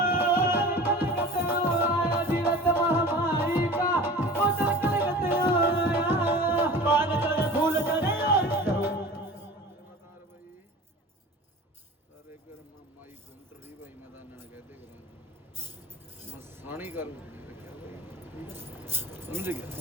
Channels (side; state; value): both; normal; correlation 0.39